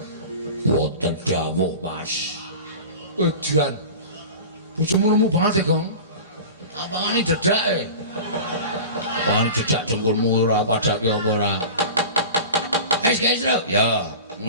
wonten dawuh, Mas. Edian. Bojomu lemu banget ya, Gong. Apangane dedake? Apangane dedak dengkulmu ora padake apa ora? Guys, lho. Ya,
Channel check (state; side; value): inverted; both; correlation -0.34